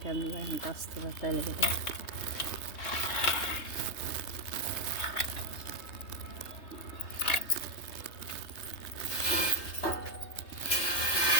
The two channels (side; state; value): right; late; 3.2 ms